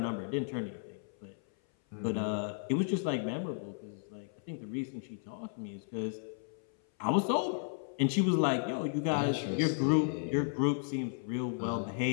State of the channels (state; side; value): silent; right; 55 dB below the other